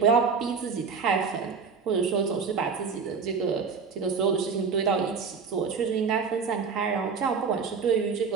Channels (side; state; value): left; quieter; 5.5 dB